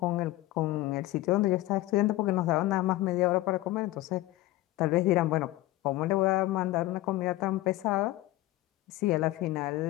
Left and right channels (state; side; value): quieter; right; 17.3 dB